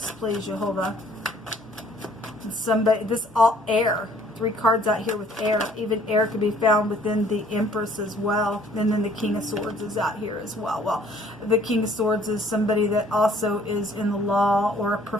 please, Jehovah. Somebody, this all air. 3 cards out here with air. Even air could be found within the Empress as well. And then the King of Swords is out here as well. Well, the King of Swords is somebody that also is in the law, or a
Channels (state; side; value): normal; both; correlation 0.59